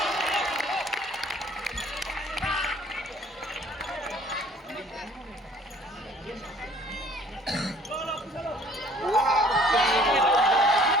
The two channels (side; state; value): both; normal; correlation 0.55